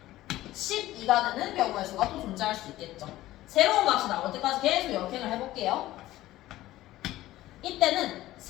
12가 되는 경우의 수가 또 존재할 수 있겠죠. 새로운 값이 나올 때까지 계속 역행을 해볼게요. 이때는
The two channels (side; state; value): right; quieter; 15.7 dB